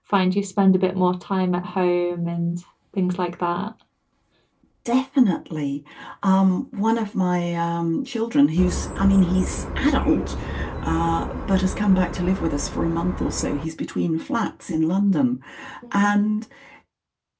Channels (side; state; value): both; identical; correlation 1.00